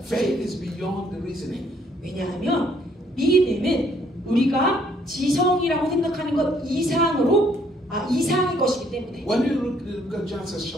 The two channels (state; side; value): normal; both; correlation 0.66